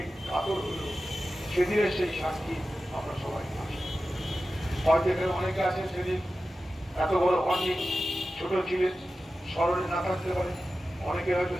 কাতর হল। সেদিনের সেই সাক্ষী আমরা সবাই আছি। হয়তো এখানে অনেকে আছেন সেদিন এত বড় হননি, ছোট ছিলেন, স্মরণে না থাকতে পারে। অনেকে হয়তো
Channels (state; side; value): normal; both; correlation 0.93